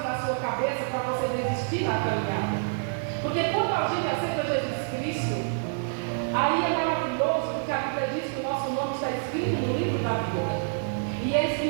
na sua cabeça para você desistir na caminhada. Porque quando a gente aceita Jesus Cristo, aí é maravilhoso, porque a Bíblia diz que o nosso nome está escrito no livro da vida, e é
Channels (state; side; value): silent; left; 56 dB below the other